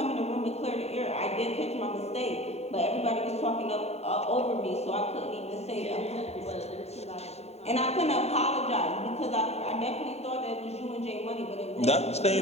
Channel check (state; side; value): late; right; 0.31 ms